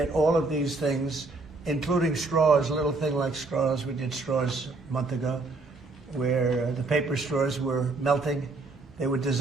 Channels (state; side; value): quieter; left; 3.4 dB